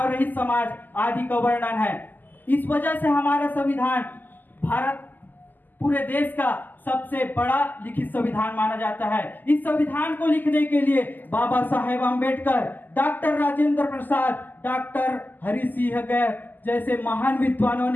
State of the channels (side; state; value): right; late; 0.087 ms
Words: रहित समाज आदि का वर्णन है। इस वजह से हमारा संविधान भारत पूरे देश का सबसे बड़ा लिखित संविधान माना जाता है। इस संविधान को लिखने के लिए बाबा साहेब अम्बेडकर, डॉक्टर राजेंद्र प्रसाद, डॉक्टर हरि सिंह गैर जैसे महान विद्वानों